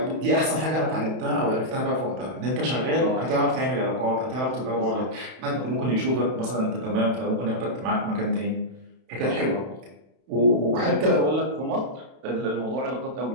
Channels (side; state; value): left; late; 32 ms